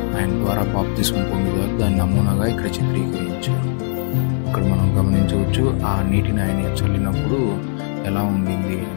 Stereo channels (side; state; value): right; silent; 66 dB below the other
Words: ఆయన ద్వారా బాప్తిస్మం పొందుతారు. దాని నమూనాగా ఇక్కడ చిత్రీకరించారు. ఇక్కడ మనం గమనించవచ్చు ఆ నీటిని ఆయన చల్లినప్పుడు ఎలా ఉండింది